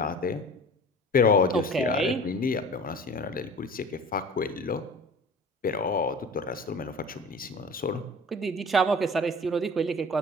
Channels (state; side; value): normal; both; correlation 0.40